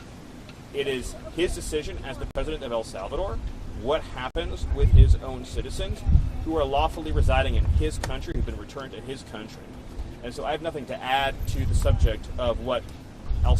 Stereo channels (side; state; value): both; identical; correlation 1.00